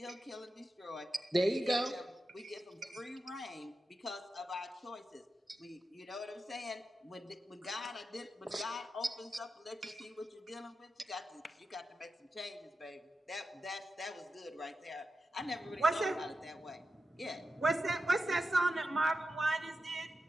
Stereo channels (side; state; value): both; normal; correlation 0.90